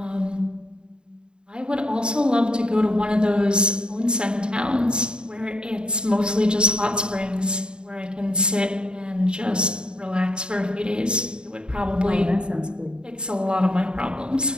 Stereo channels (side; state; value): left; late; 0.050 ms